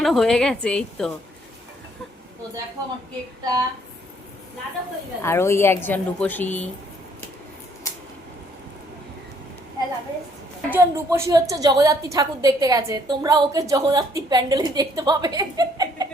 হয়ে গেছে। এই তো দেখো আমার কেকটা। আর ওই একজন রূপসী, একজন রূপসী হচ্ছে জগদ্ধাত্রী ঠাকুর দেখতে গেছে, তোমরা ওকে জগদ্ধাত্রী প্যান্ডেলে দেখতে পাবে।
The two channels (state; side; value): normal; both; correlation 0.65